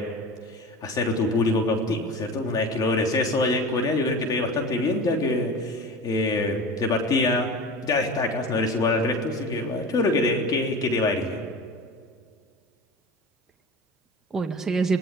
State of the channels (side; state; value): both; normal; correlation 0.33